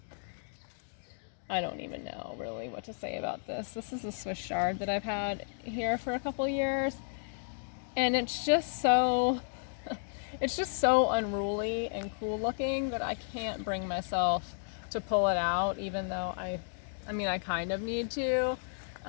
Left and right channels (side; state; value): right; silent; digital silence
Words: I don't even know really what to say about this. This is a Swiss chard that I've had here for a couple years, and it's just so unruly and cool looking that I can't bring myself to pull it out, even though I kind of need to.